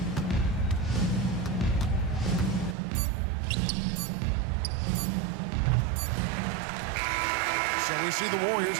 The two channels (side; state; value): left; drops out; at 2.8 s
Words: So we see the Warriors